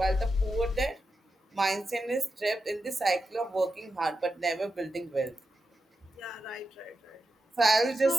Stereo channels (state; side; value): normal; both; correlation 0.88